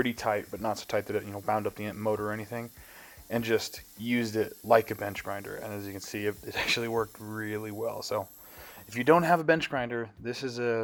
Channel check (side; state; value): both; identical; correlation 1.00